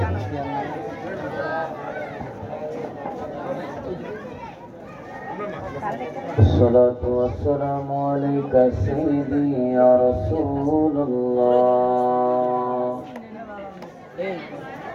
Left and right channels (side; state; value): both; identical; correlation 1.00